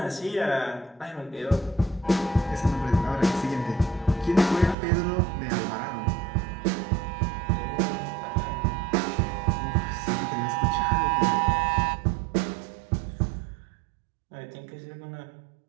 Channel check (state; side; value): drops out; left; at 4.8 s